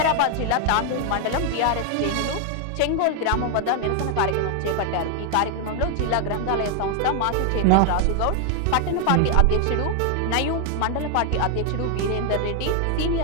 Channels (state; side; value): different; both; correlation 0.00